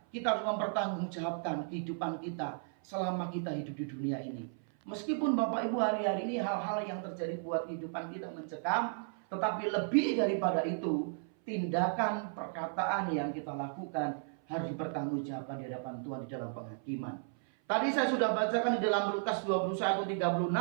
harus mempertanggungjawabkan kehidupan kita selama kita hidup di dunia ini. Meskipun Bapak Ibu hari-hari ini hal-hal yang terjadi buat kehidupan kita mencekam, tetapi lebih daripada itu, tindakan perkataan yang kita lakukan harus dipertanggungjawabkan di hadapan Tuhan di dalam penghakiman. Tadi saya sudah bacakan di dalam Lukas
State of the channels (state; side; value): silent; left; 55 dB below the other